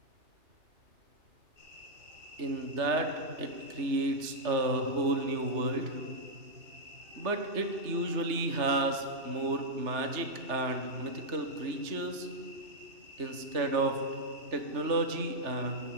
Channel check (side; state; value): left; late; 3.3 ms